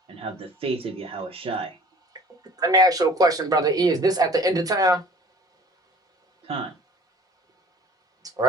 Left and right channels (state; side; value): normal; both; correlation 0.48